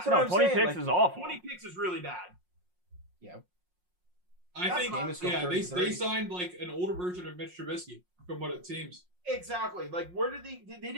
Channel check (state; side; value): late; left; 5.5 ms